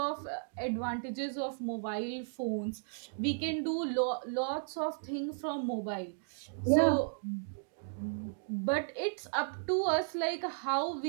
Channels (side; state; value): left; silent; digital silence